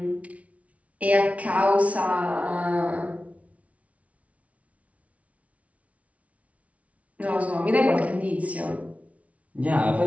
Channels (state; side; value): late; left; 0.066 ms